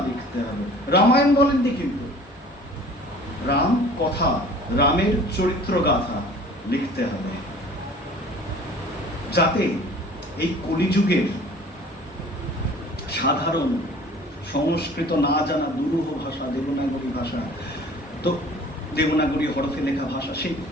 লিখতে হবে। রামায়ণ বলেননি কিন্তু, রাম কথা, রামের চরিত্র গাথা লিখতে হবে, যাতে এই কলিযুগের সাধারণ সংস্কৃত না জানা দুরূহ ভাষা, দেবনাগরী ভাষা, তো দেবনাগরী হরফে লেখা ভাষা, সেই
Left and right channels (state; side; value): normal; both; correlation 0.48